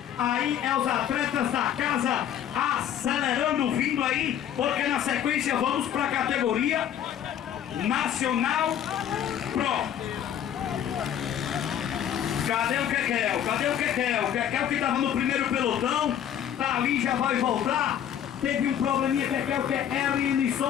Aí é os atletas da casa acelerando, vindo aí, porque na sequência vamos para a categoria Nacional Pro. Cadê o Kekel? O Kekel que estava no primeiro pelotão, tá ali, já vai voltar. Teve um probleminha, Kekel, que é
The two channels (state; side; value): quieter; right; 9.9 dB